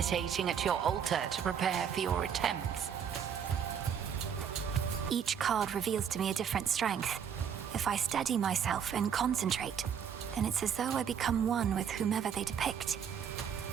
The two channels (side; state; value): left; quieter; 7.9 dB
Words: at your altar to prepare for your attempts. Each card reveals to me a different strength. If I steady myself and concentrate, then it's as though I become one with whomever they depict.